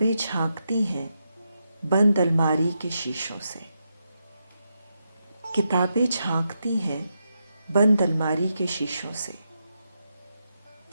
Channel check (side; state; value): both; inverted; correlation -0.84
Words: झांकती हैं बंद अलमारी के शीशों से, किताबें झांकती हैं बंद अलमारी के शीशों से।